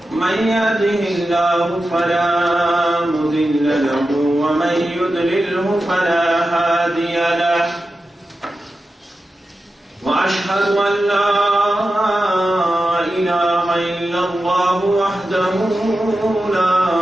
من يهده الله فلا مضل له ومن يضلله فلا هادي له. وأشهد أن لا إله إلا الله وحده لا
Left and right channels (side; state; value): both; normal; correlation 0.92